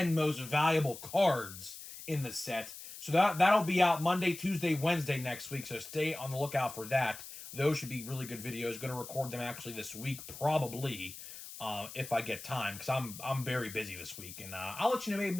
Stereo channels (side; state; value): left; noise; hiss, 13 dB below the sound